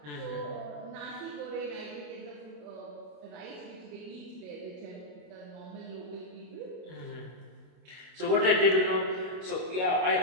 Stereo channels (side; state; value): left; late; 27 ms